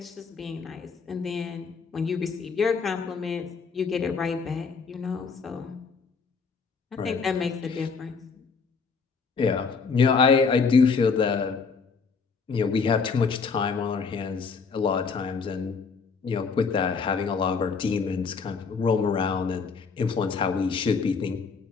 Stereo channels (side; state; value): right; quieter; 5.2 dB